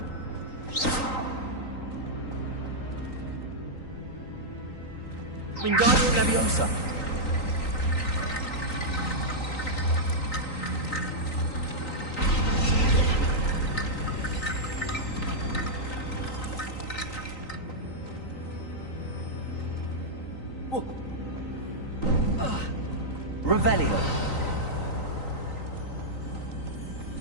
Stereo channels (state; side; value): late; right; 3.9 ms